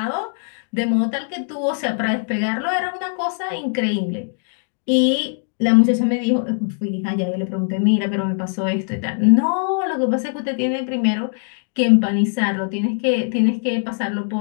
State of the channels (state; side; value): silent; right; 65 dB below the other